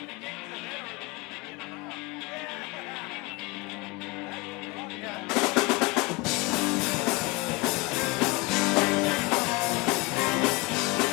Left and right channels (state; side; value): quieter; right; 25.0 dB